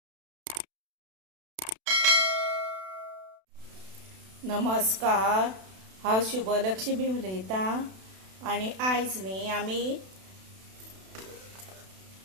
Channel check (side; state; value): left; late; 32 ms